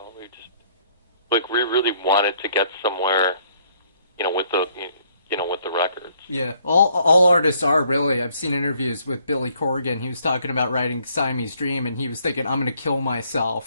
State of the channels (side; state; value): both; inverted; correlation -0.65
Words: We really wanted to get somewhere, with with the records. Yeah, all artists are really. I've seen interviews with Billy Corgan. He was talking about writing Siamese Dream, and he was thinking, "I'm going to kill